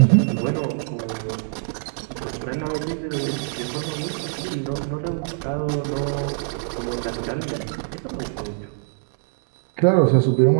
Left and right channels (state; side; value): silent; left; digital silence